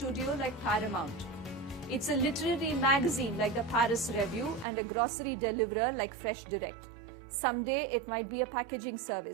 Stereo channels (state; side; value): drops out; left; at 4.7 s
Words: like Paramount. It's a literary magazine like the Paris Review and a grocery deliverer like Fresh Direct. Someday it might be a packaging